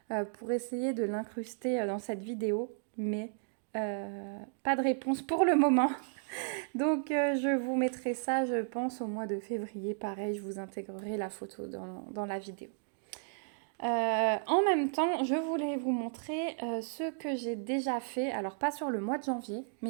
pour essayer de l'incruster dans cette vidéo, mais pas de réponse pour le moment. Donc je vous mettrai ça, je pense, au mois de février. Pareil, je vous intégrerai la photo dans la vidéo. En même temps, je voulais vous montrer ce que j'ai déjà fait, alors pas sur le mois de janvier,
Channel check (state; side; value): silent; left; digital silence